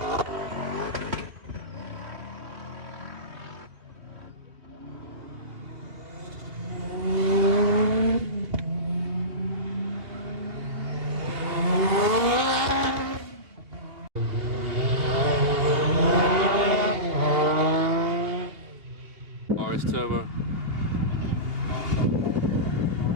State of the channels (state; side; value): late; left; 2.6 ms